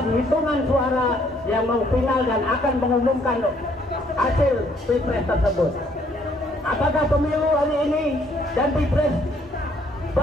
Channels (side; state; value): both; normal; correlation 0.66